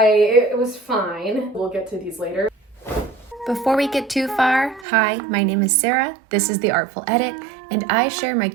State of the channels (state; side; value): drops out; left; at 4.9 s